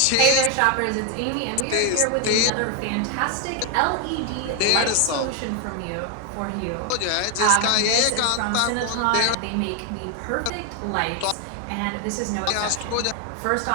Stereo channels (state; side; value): different; both; correlation 0.01